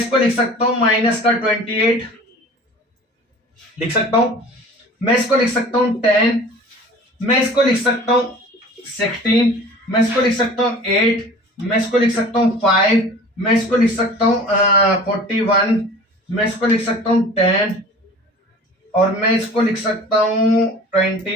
लिख सकता हूं माइनस का 28 लिख सकता हूं, मैं इसको लिख सकता हूं 10, मैं इसको लिख सकता हूं 16, मैं इसको लिख सकता हूं 8, मैं इसको लिख सकता हूं 5, मैं इसको लिख सकता हूं 41, मैं इसको लिख सकता हूं 10, और मैं इसको लिख सकता हूं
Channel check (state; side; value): normal; both; correlation 0.43